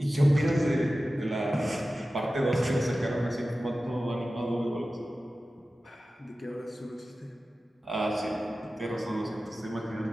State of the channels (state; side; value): normal; both; correlation 0.95